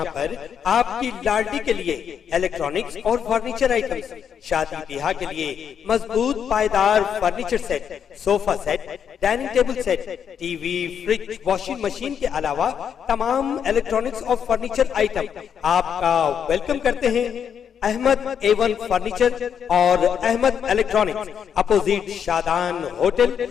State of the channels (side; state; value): right; quieter; 7.9 dB